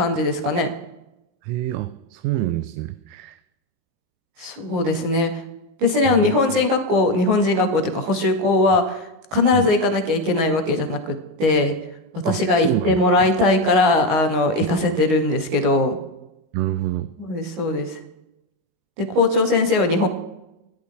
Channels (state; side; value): late; left; 19 ms